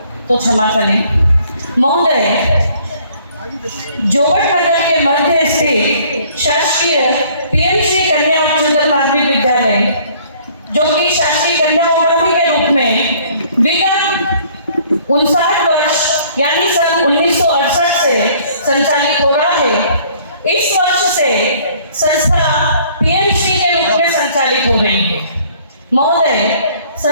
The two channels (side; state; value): both; inverted; correlation -0.57